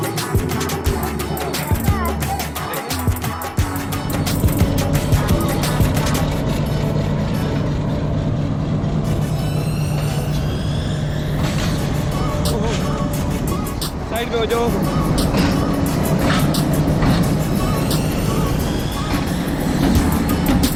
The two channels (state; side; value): identical; both; correlation 1.00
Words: साइड पे हो जाओ।